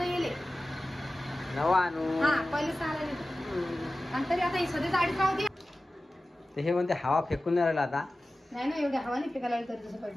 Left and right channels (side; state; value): both; normal; correlation 0.96